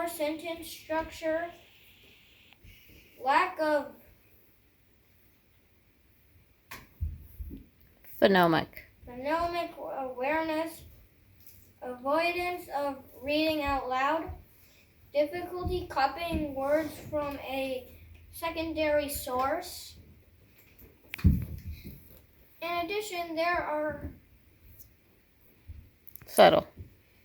sentence structure, lack of phonemic awareness, avoidance of reading out loud, difficulty copying words from a secondary source. In addition, there are subtle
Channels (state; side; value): identical; both; correlation 1.00